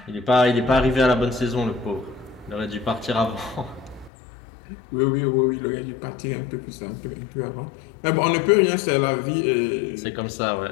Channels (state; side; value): drops out; right; at 4.1 s